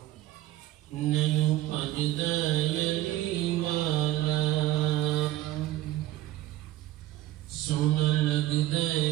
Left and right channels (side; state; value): left; quieter; 15.4 dB